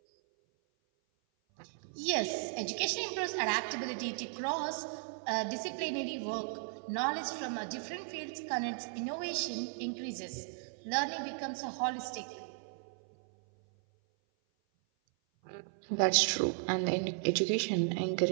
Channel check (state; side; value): silent; left; 54 dB below the other